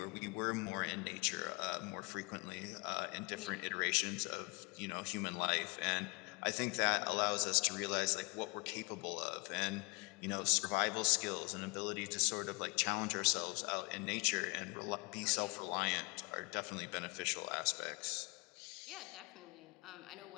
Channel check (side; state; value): right; quieter; 27.2 dB